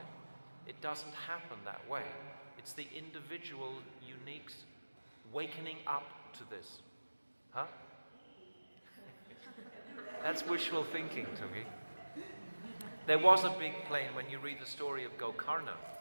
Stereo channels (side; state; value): both; inverted; correlation -1.00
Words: It doesn't happen that way. It's the individual, unique wakening up to this. Huh? That's wishful thinking, Tungi. There was a big plane when you read the story of Gokarna.